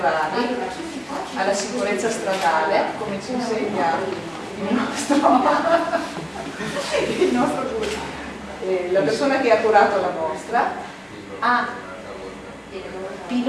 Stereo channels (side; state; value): both; identical; correlation 1.00